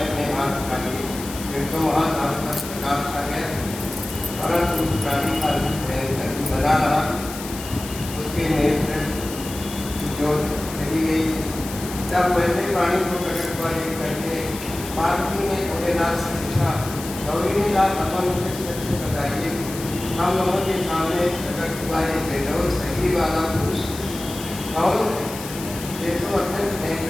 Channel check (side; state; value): left; noise; hiss, 12 dB below the sound